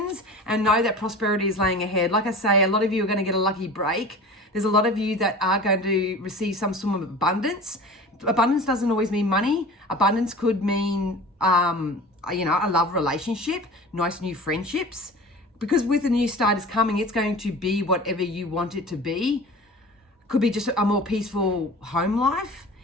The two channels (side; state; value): both; normal; correlation 0.38